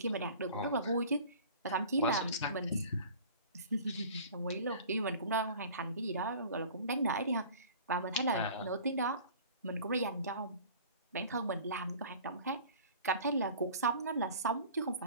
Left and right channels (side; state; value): both; inverted; correlation -0.44